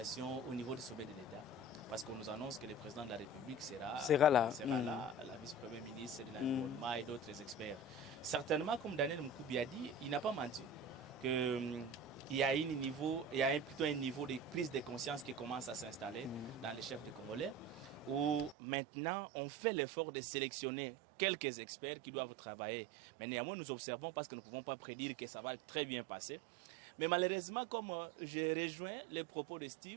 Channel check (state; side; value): drops out; left; at 18.6 s